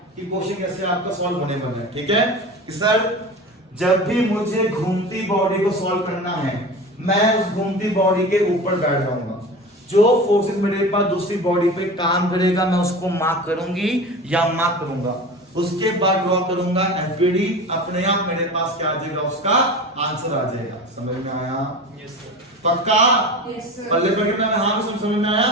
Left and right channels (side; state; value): both; normal; correlation 0.32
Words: कि क्वेश्चन कैसे आपका सॉल्व होने वाला है, ठीक है। कि सर जब भी मुझे घूमती बॉडी को सॉल्व करना है, मैं उस घूमती बॉडी के ऊपर बैठ जाऊंगा, जो फोर्सेस मेरे पास दूसरी बॉडी पे काम करेगा, मैं उसको मार्क करूंगी या मार्क करूंगा, उसके बाद ड्रॉ करूंगा एफबीडी, अपने आप मेरे पास क्या आ जाएगा, उसका आंसर आ जाएगा। समझ में आया? Yes sir. पक्का? Yes sir. पल्ले पर कितना है? हाँ समझ में